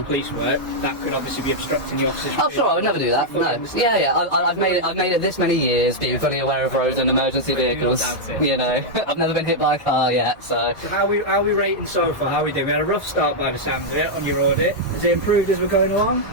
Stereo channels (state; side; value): normal; both; correlation -0.04